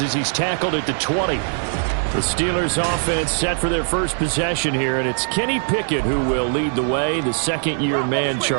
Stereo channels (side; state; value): left; silent; 65 dB below the other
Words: as he's tackled at the 20. The Steelers offense set for their first possession here, and it's Kenny Pickett who will lead the way, the second-year man,